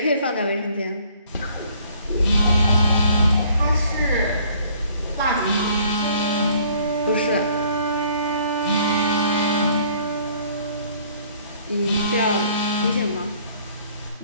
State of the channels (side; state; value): both; inverted; correlation -0.58